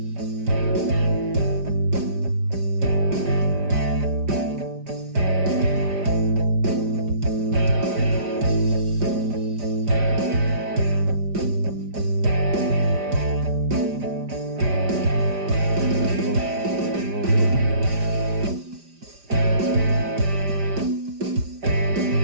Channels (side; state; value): left; late; 5.0 ms